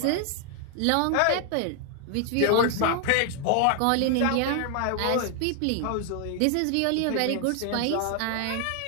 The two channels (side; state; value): both; different; correlation 0.00